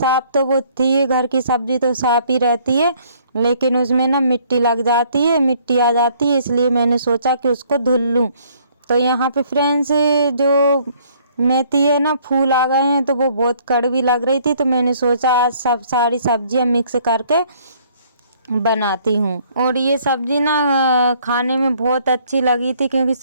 तो वो थी, घर की सब्जी तो साफ़ ही रहती है, लेकिन उसमें ना मिट्टी लग जाती है, मिट्टी आ जाती है, इसलिए मैंने सोचा कि उसको धुल लूँ। तो यहाँ पे फ्रेंड्स जो मेथी है ना, फूल आ गए हैं, तो वो बहुत कड़वी लग रही थी, तो मैंने सोचा आज सब सारी सब्जियां मिक्स करके बनाती हूँ। और ये सब्जी ना खाने में बहुत अच्छी लगी थी, क्योंकि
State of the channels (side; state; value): both; inverted; correlation -0.62